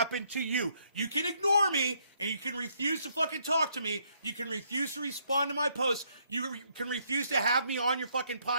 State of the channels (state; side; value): inverted; both; correlation -0.71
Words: to you. You can ignore me, and you can refuse to fucking talk to me. You can refuse to respond to my posts. You can refuse to have me on your fucking